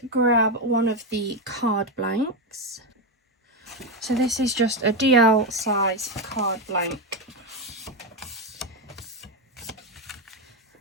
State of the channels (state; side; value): normal; both; correlation 0.09